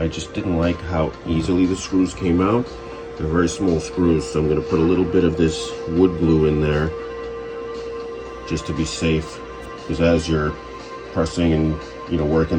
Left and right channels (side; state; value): both; identical; correlation 1.00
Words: just didn't like how easily the screws came out. They're very small screws, so I'm going to put a little bit of this wood glue in there just to be safe, because as you're pressing and working